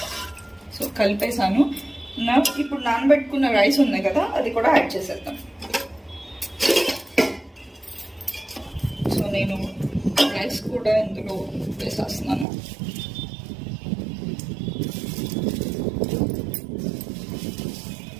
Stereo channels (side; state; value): left; drops out; at 12.5 s